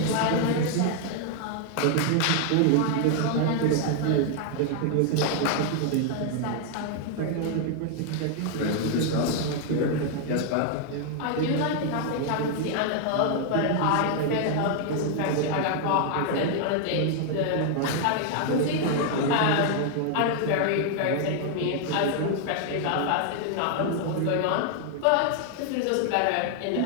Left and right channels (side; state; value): both; different; correlation 0.00